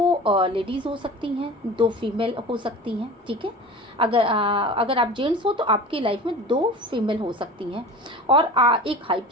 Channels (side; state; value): both; normal; correlation 0.36